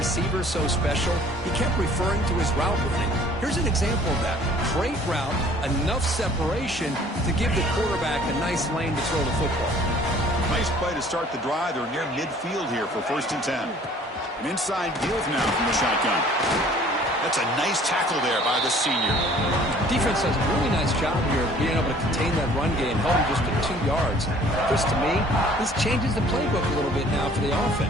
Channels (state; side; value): normal; both; correlation 0.54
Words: so special. He kept referring to his route running. Here's an example of that. Great route, enough separation to give the quarterback a nice lane to throw the football. Nice play to start the drive. They're near midfield here for 1st and 10. An inside deal now from the shotgun. That's a nice tackle there by the senior. Defense does a really nice job here of being able to contain that run game, held him just to 2 yards. Just to me, this changes the playbook a little bit now for the